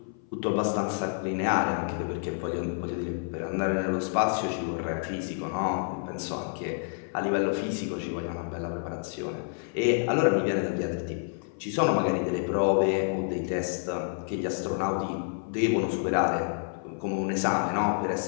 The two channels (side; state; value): right; silent; 56 dB below the other